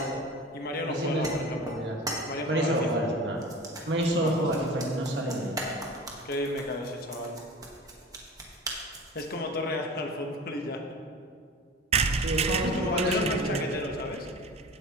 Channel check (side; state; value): both; normal; correlation 0.36